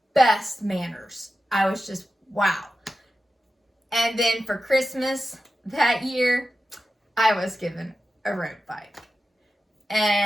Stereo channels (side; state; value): both; normal; correlation 0.92